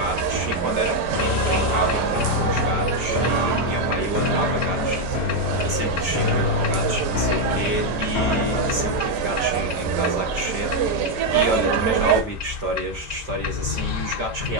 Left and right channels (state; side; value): late; left; 5.1 ms